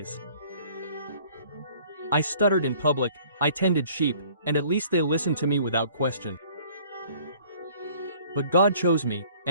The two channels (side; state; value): both; inverted; correlation -0.54